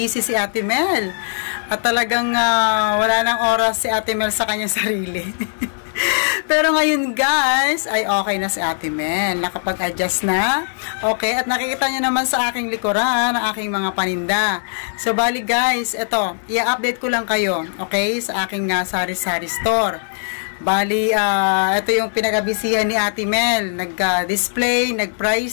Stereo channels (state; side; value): silent; right; digital silence